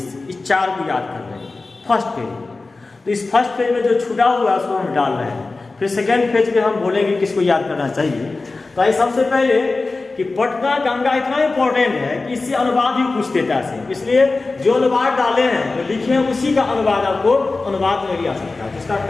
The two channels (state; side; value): quieter; right; 3.6 dB